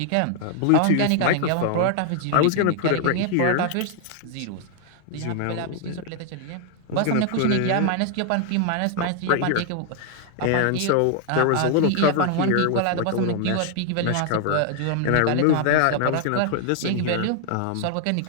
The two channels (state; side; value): different; both; correlation 0.00